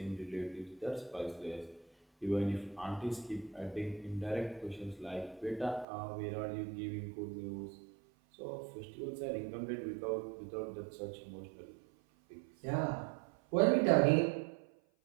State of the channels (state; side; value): drops out; left; at 5.9 s